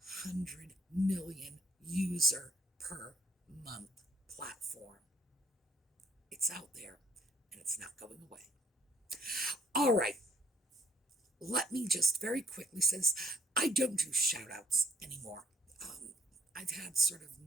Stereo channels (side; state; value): both; normal; correlation 0.65